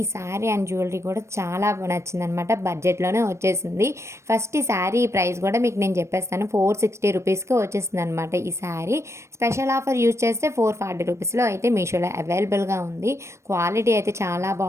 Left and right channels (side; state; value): left; late; 0.13 ms